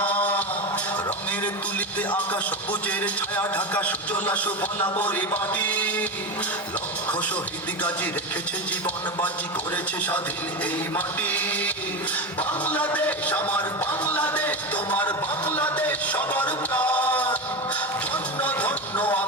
রঙের তুলিতে আকাশ সবুজের ছায়া ঢাকা সুজলা সুফলা পরিপাটি, লক্ষ শহীদ গাজী রেখেছে জীবন বাজি, করেছে স্বাধীন এই মাটি। বাংলাদেশ আমার বাংলাদেশ, তোমার বাংলাদেশ সবার প্রাণ। ধন্য ধন্য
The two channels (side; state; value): both; normal; correlation 0.19